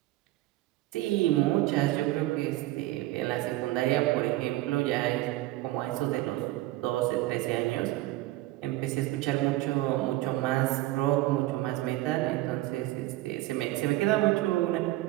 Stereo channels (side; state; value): left; quieter; 17.3 dB